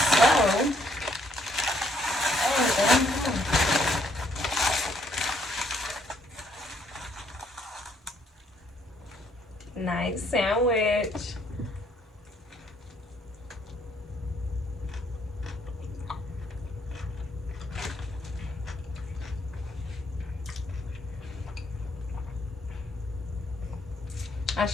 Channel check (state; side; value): normal; both; correlation 0.69